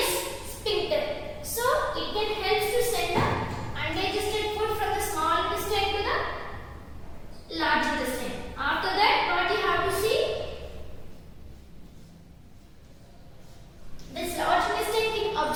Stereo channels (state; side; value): identical; both; correlation 1.00